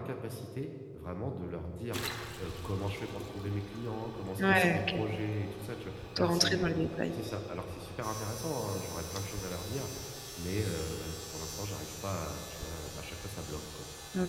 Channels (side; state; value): both; identical; correlation 1.00